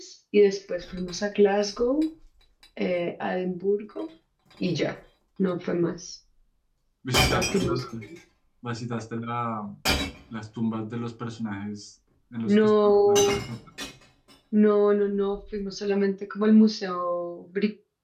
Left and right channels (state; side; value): identical; both; correlation 1.00